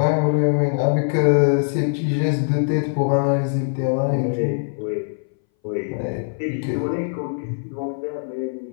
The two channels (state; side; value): silent; right; 61 dB below the other